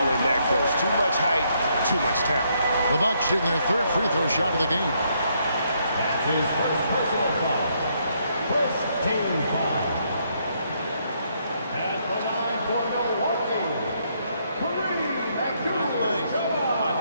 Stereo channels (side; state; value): both; inverted; correlation -0.73